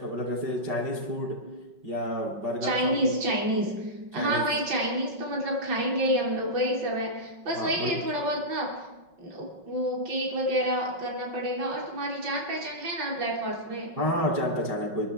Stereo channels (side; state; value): left; late; 5.4 ms